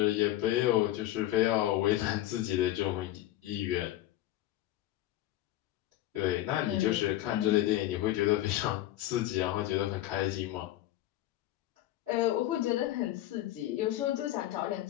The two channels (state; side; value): quieter; right; 14.5 dB